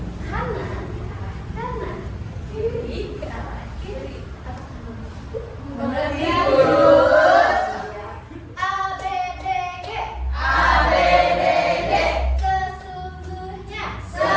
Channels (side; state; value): both; identical; correlation 1.00